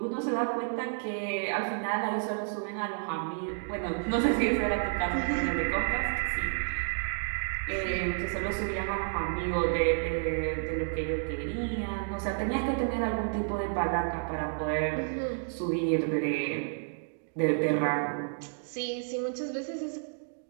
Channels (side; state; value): left; silent; digital silence